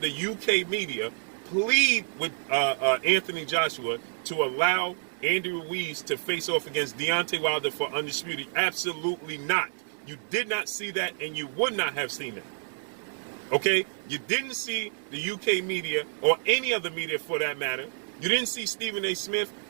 UK media plead with Anthony Joshua to allow Andrew Ruiz to face off against Deontay Wilder for undisputed? Absolutely not. You did not see that, and you would not have seen that. Okay? You didn't see the UK media, or any other media for that matter. You didn't see Stephen A. Smith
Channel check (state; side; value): silent; left; digital silence